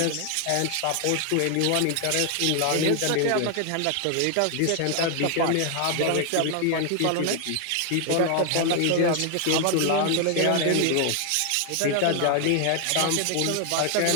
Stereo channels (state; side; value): different; both; correlation 0.00